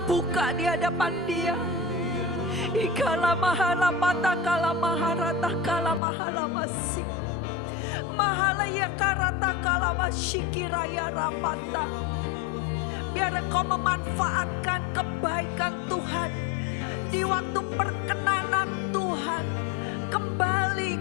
di hadapan Dia. Ikala mahala pata kala maharata kala mahala masih. Mahala ya karata kala masyikiraya rapata. Biar Engkau memanfaatkan kebaikan Tuhan di waktu perkenanan Tuhan. Kembali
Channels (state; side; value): drops out; right; at 6.0 s